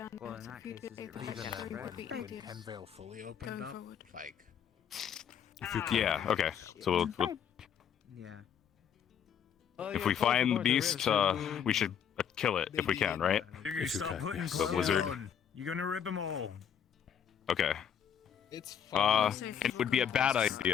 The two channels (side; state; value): right; quieter; 8.4 dB